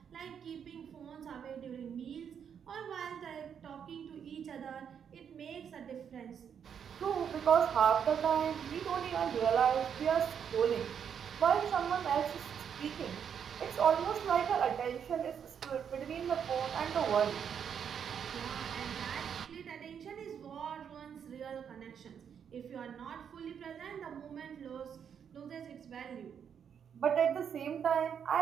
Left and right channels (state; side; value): quieter; left; 7.8 dB